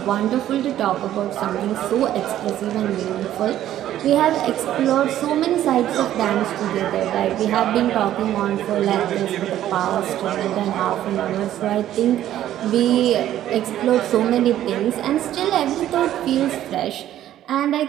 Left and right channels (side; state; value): left; quieter; 12.3 dB